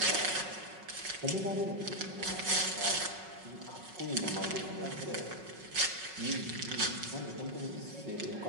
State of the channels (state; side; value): late; left; 5.4 ms